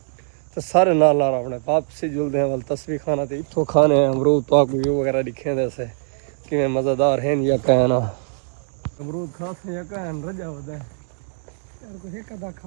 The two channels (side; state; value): left; silent; digital silence